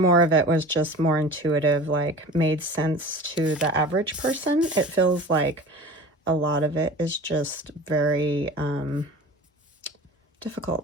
of it was just more intuitive, like made sense to the average person. It feels like a lot of it is just very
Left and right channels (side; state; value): both; normal; correlation 0.38